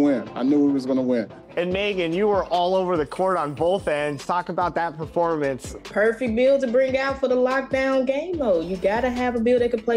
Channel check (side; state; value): both; identical; correlation 1.00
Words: I knew we was going to win. And Megan, you were all over the court on both ends. Talk about that performance. Perfect build to bring out for the lockdown game mode. You got to have a build that can